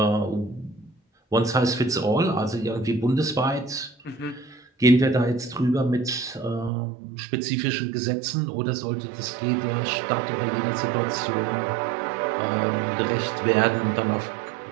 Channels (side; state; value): left; drops out; at 6.7 s